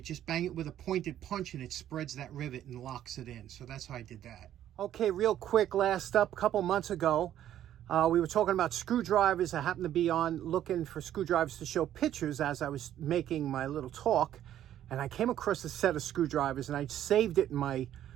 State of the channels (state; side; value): quieter; left; 11.5 dB